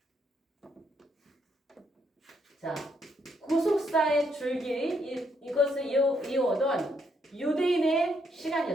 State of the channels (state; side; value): normal; both; correlation 0.74